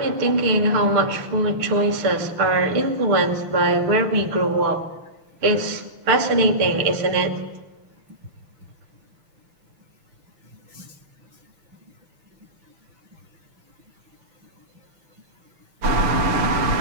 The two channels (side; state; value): left; late; 6.6 ms